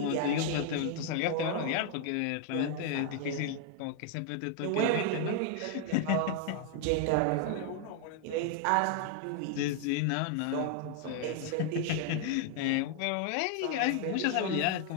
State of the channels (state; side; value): different; both; correlation 0.00